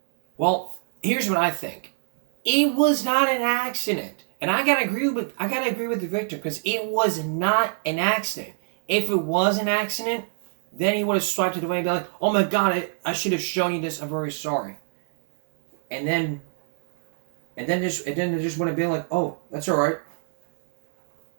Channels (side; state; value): left; silent; digital silence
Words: Well, here's what I think. It was not an accident. And I gotta agree with the victim, because it was not an accident. If it was an accident, then he would have swiped it away and be like, "Oh my God, I should have shown you this. I'm very sorry." And then they just would have been like, "Oh, that's all right."